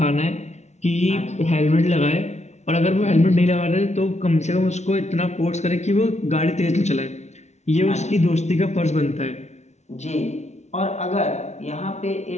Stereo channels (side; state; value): right; late; 0.32 ms